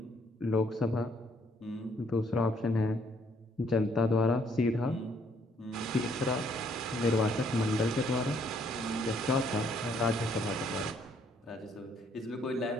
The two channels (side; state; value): both; normal; correlation 0.67